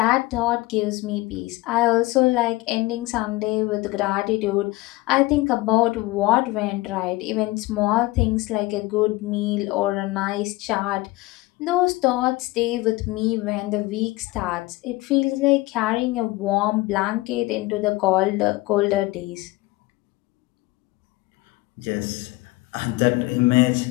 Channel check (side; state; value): right; quieter; 20.5 dB